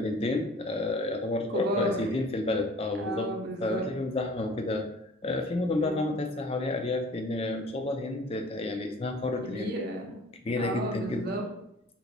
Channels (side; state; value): both; normal; correlation 0.49